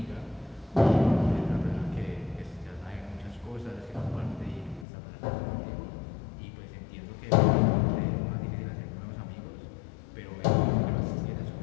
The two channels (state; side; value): drops out; right; at 4.9 s